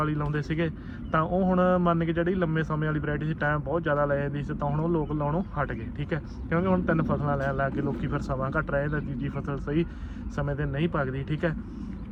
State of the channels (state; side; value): identical; both; correlation 1.00